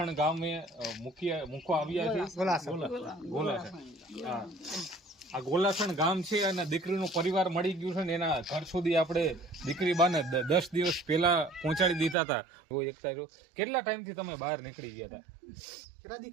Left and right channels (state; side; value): drops out; left; at 12.2 s